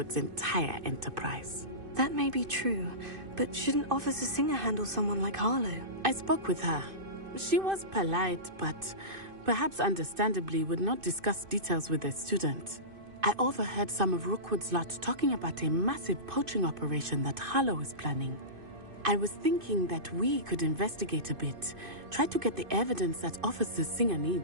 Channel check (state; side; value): late; left; 2.5 ms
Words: entire enterprise. That may be true, but shouldn't Officer Singer handle someone like Harlow? I spoke with her. She was polite, but perhaps understandably would not discuss details with a student. I overheard some of Rookwood's lot talking about a massive poaching operation that Harlow is planning. I was thinking that we could investigate a bit, try to get the evidence that Officer Singer